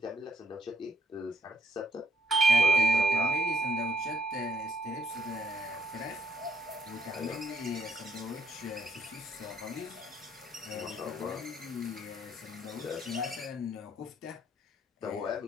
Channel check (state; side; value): normal; both; correlation 0.68